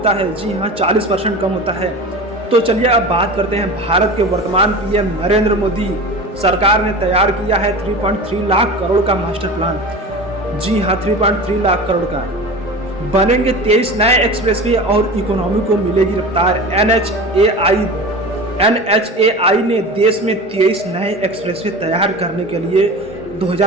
है। जी हाँ, 40% कम होता है। तो चलिए अब बात करते हैं। भारत के वर्तमान PM नरेंद्र मोदी सरकार ने तैयार किया है 3.3 लाख करोड़ का मास्टर प्लान। जी हाँ, 3.3 लाख करोड़ का। बनेंगे 23 नए एक्सप्रेसवे और इकोनॉमी को मिलेगी रफ्तार। NHAI ने देश में 23 नए एक्सप्रेसवे तैयार करने के लिए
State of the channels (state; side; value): normal; both; correlation 0.32